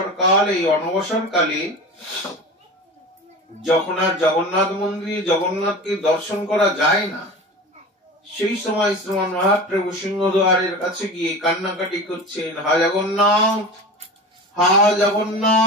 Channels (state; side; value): normal; both; correlation 0.32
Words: কাল, এই অনবসর কালে যখন আর জগন্নাথ মন্দিরে জগন্নাথকে দর্শন করা যায় না, সেই সময় শ্রীমান মহাপ্রভু সিংহদ্বারের কাছে গিয়ে কান্নাকাটি করছেন, হা জগন্নাথ, হা